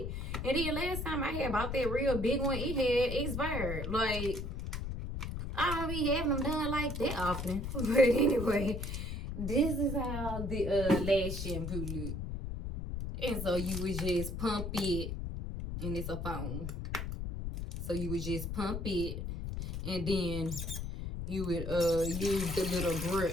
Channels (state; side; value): noise; left; rumble, 4 dB below the sound